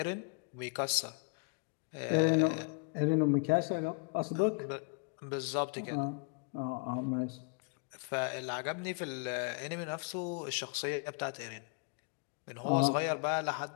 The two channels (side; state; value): right; quieter; 35.6 dB